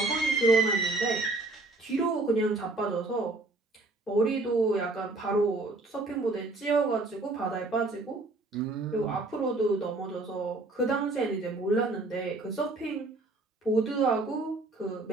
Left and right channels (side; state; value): left; quieter; 3.1 dB